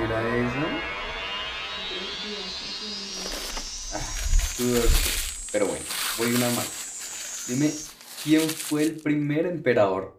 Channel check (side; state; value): both; identical; correlation 1.00